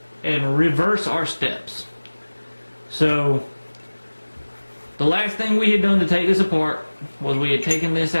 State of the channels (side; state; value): both; inverted; correlation -1.00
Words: and reverse our steps. So the last thing we had done to take this apart was we had taken this